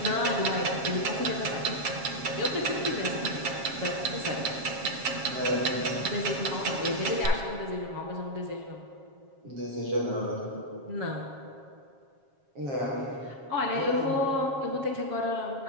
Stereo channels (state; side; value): late; left; 7.4 ms